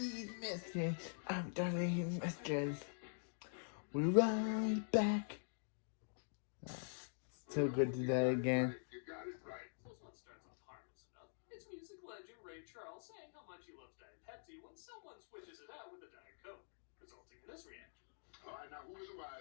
after these messages, we're right back. So good to that again. You got it right. This one starts off harmless enough. It's music legend Ray Charles saying how much he loves Diet Pepsi when someone switches it out with a Diet Coke, resulting in this reaction. All right, now who is the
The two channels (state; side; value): silent; right; digital silence